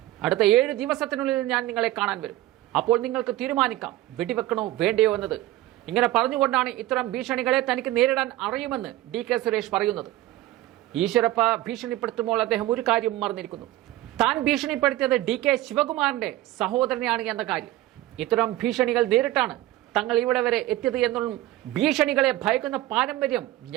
അടുത്ത 7 ദിവസത്തിനുള്ളിൽ ഞാൻ നിങ്ങളെ കാണാൻ വരും. അപ്പോൾ നിങ്ങൾക്ക് തീരുമാനിക്കാം വെടിവെക്കണോ വേണ്ടയോ എന്നത്. ഇങ്ങനെ പറഞ്ഞുകൊണ്ടാണ് ഇത്തരം ഭീഷണികളെ തനിക്ക് നേരിടാൻ അറിയുമെന്ന് ഡി.കെ. സുരേഷ് പറയുന്നത്. ഈശ്വരപ്പ ഭീഷണിപ്പെടുത്തുമ്പോൾ അദ്ദേഹം ഒരു കാര്യം മറന്നിരിക്കുന്നു. താൻ ഭീഷണിപ്പെടുത്തിയത് ഡി.കെ. ശിവകുമാറിന്റെ സഹോദരനെയാണ് എന്ന കാര്യം. ഇത്തരം ഭീഷണികൾ നേരിട്ടാണ് തങ്ങൾ ഇവിടെ വരെ എത്തിയത് എന്നും ഭീഷണികളെ ഭയക്കുന്ന പാരമ്പര്യം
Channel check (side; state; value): left; quieter; 16.0 dB